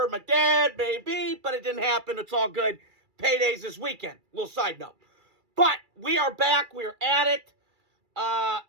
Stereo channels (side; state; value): left; late; 2.3 ms